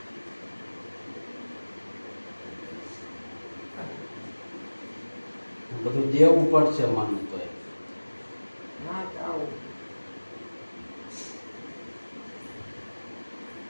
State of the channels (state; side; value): inverted; both; correlation -1.00